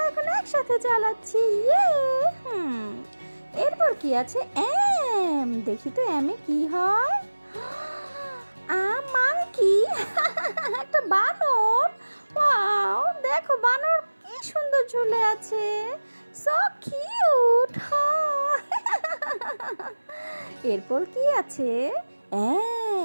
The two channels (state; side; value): inverted; both; correlation -1.00